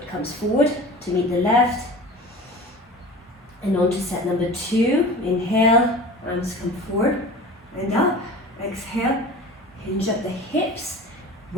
comes forward to meet the left. And on to set number 2. Inhale, arms come forward and up. Exhale, hinge at the hips.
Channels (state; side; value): normal; both; correlation 0.37